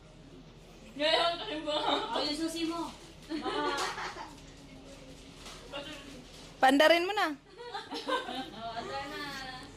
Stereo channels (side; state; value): both; identical; correlation 1.00